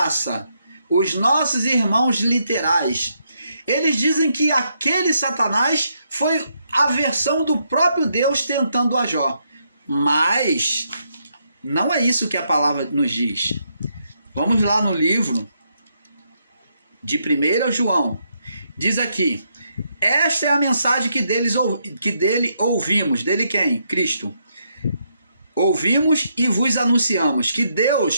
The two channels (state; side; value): inverted; both; correlation -0.77